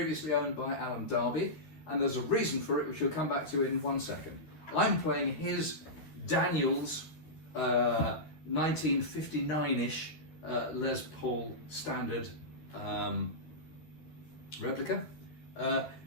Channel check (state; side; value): late; right; 13 ms